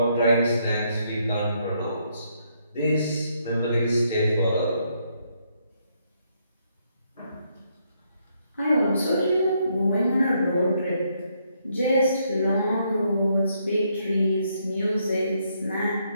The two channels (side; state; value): both; inverted; correlation -0.74